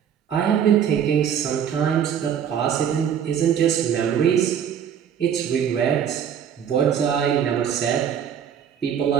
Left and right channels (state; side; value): quieter; left; 8.6 dB